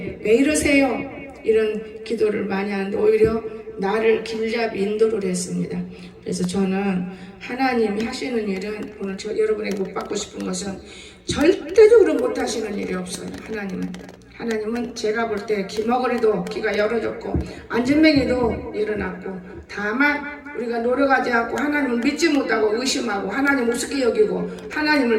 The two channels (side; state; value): both; identical; correlation 1.00